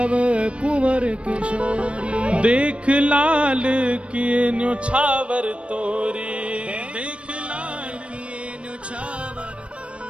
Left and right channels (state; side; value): late; left; 0.060 ms